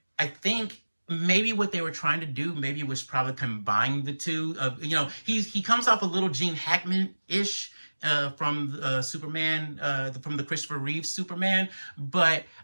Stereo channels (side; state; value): both; inverted; correlation -1.00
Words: I think maybe what they were trying to do maybe was probably combine the two. He comes off a little Gene Hackman-ish from Superman, from the Christopher Reeve Superman, but